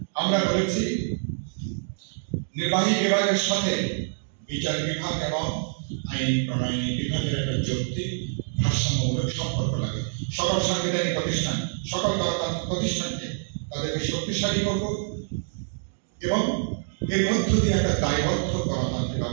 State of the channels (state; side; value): silent; left; digital silence